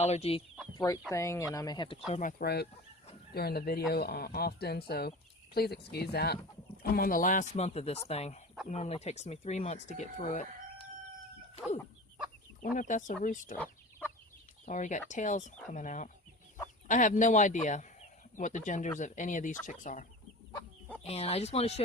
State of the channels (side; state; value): both; normal; correlation 0.35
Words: throat thing, and I may have to clear my throat during the video often, so please excuse that. I'm on the last month of this thing. It normally takes me 3 months to get through it. Ooh, wonder if that's a rooster. It's already got tails coming out. I have no idea what the genders of any of these chicks are. And I just want to